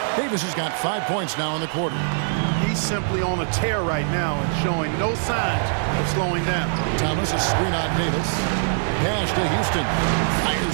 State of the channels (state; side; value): silent; left; digital silence